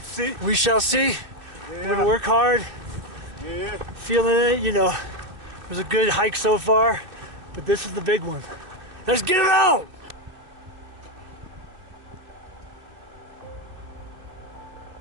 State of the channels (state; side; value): late; left; 2.7 ms